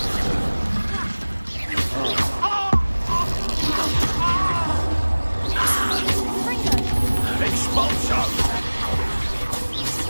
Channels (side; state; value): both; inverted; correlation -1.00